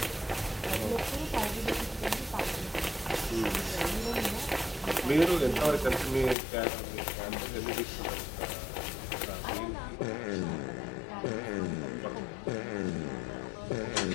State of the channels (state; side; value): drops out; right; at 6.4 s